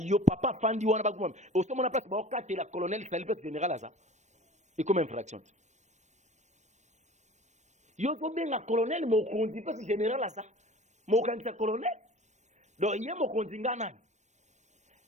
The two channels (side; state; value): left; late; 0.34 ms